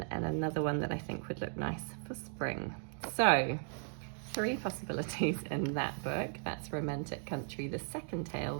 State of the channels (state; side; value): silent; left; 53 dB below the other